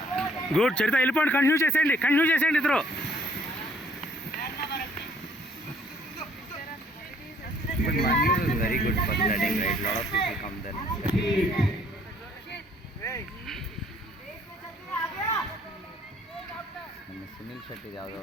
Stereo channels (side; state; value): both; normal; correlation 0.62